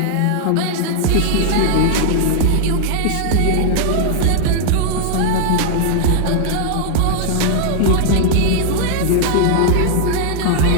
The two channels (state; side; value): different; both; correlation -0.01